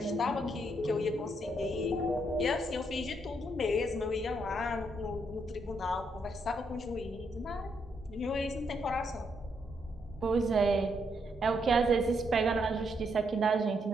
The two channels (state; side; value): normal; both; correlation 0.76